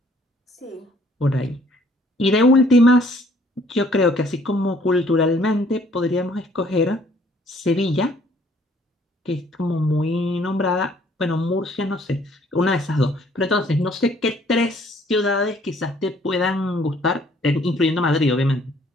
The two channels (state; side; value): normal; both; correlation 0.61